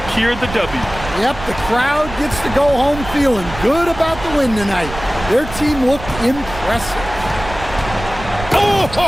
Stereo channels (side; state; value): right; noise; rumble, 11 dB below the sound